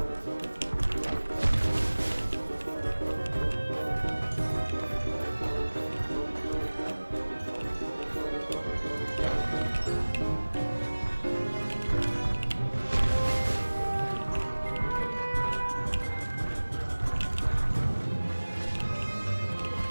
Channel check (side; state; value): both; inverted; correlation -1.00